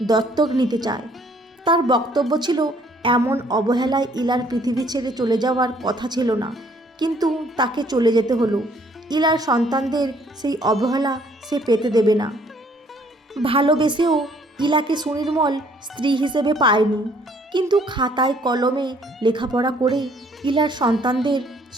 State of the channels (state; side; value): normal; both; correlation 0.62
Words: দত্তক নিতে চায়। তার বক্তব্য ছিল এমন অবহেলায় ইলার পৃথিবী ছেড়ে চলে যাওয়ার কথা ছিল না, কিন্তু তাকে চলে যেতে হলো। ইলার সন্তানদের সেই অবহেলা সে পেতে দেবে না। ভালোবেসেও ইলাকে সুনির্মল স্ত্রী হিসেবে পায়নি, কিন্তু খাতায় কলমে লেখাপড়া করে ইলার সন্তানদের